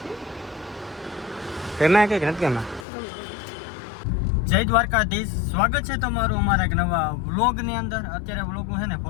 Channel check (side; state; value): right; drops out; at 2.9 s